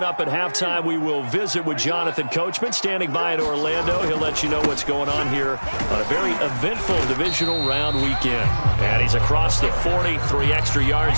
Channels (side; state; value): both; inverted; correlation -1.00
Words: up at halftime, we will visit with Jonathan Coachman, standing by in Orlando. He'll let you know what's going on here on a very eventful divisional round weekend. And he's across the 40, 3 extra